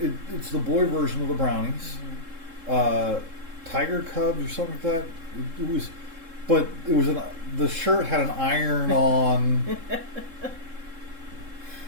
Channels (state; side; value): late; left; 3.7 ms